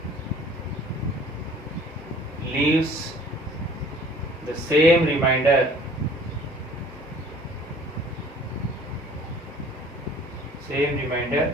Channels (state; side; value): normal; both; correlation 0.51